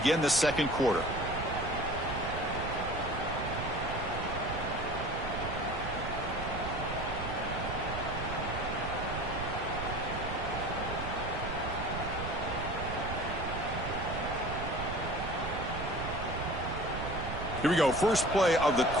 the second quarter. Here we go. First play of the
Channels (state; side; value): noise; right; rumble, 6 dB below the sound